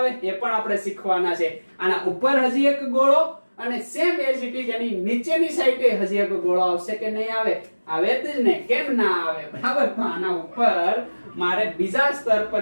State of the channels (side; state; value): both; inverted; correlation -1.00